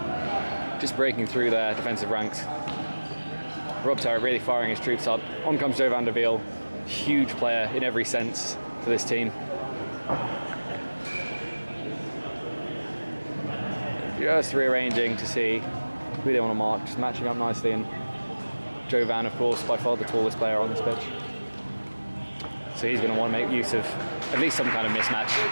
Just breaking through their defensive ranks. Rob Terrett really firing his troops up. On comes Joe van der Wiel, huge player in every sense for this team. Just rearranging to see who they want to mark, just matching up nicely, and Joe Van, of course, by far the tallest player on this pitch. So he's going to want to make use of at least some kind of mismatch.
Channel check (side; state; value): both; inverted; correlation -1.00